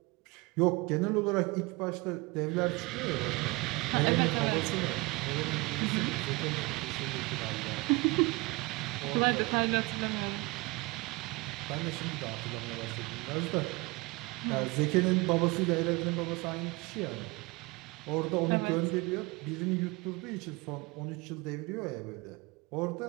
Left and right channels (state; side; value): quieter; left; 24.4 dB